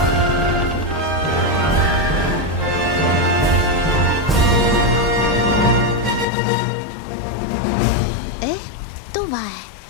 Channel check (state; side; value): drops out; right; at 6.2 s